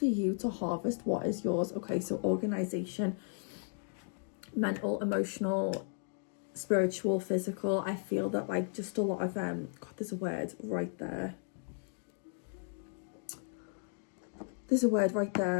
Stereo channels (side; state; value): right; silent; 54 dB below the other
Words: you to harvest what is yours. Okay, so organization, mental, emotional, spiritual, physical. I feel that like just a lot of God, there's a word right there. There's a word right